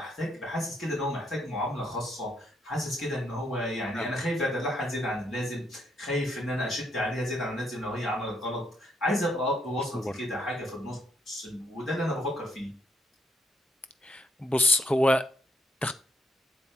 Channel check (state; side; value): normal; both; correlation 0.74